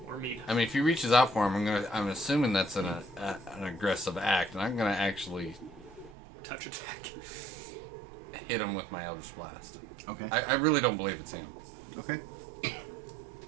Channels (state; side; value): drops out; left; at 6.2 s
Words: Or meat. I mean, if he reaches out for him, I'm assuming that's an aggressive act, and I'm gonna actually Touch attack. hit him with my Eldritch Blast. Okay. I really don't believe it's him. Okay.